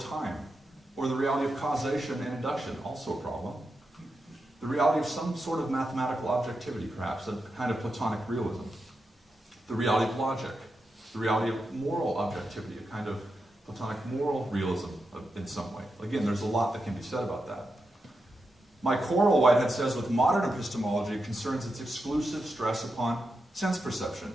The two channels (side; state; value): both; normal; correlation 0.87